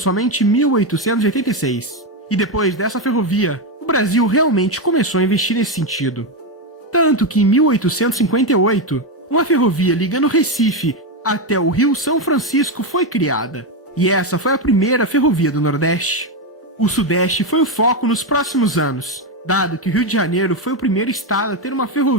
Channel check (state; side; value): normal; both; correlation 0.08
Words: em 1886. E depois dessa ferrovia, o Brasil realmente começou a investir nesse sentido. Tanto que em 1858, uma ferrovia ligando Recife até o Rio São Francisco foi criada. E essa foi a primeira ferrovia do Nordeste. O Sudeste foi o foco nos próximos anos, dado que o Rio de Janeiro foi o primeiro estado a ter uma